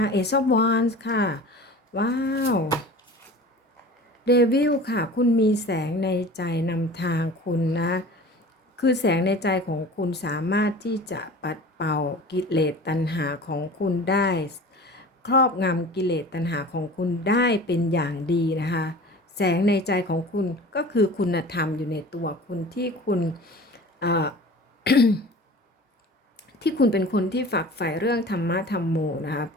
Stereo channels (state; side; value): normal; both; correlation 0.40